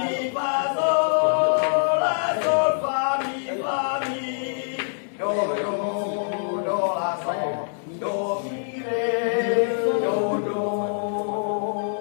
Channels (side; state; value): right; silent; 60 dB below the other